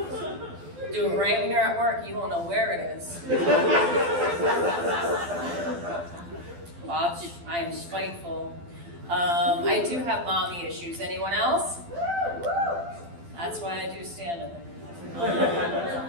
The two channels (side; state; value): left; late; 12 ms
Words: Do it right when you're at work, you won't know where it is. Watch, I am spiteful. I do have mommy issues. Anyone else? That's why I do stand-up.